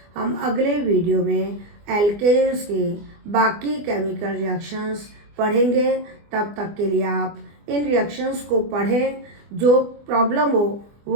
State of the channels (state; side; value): late; left; 24 ms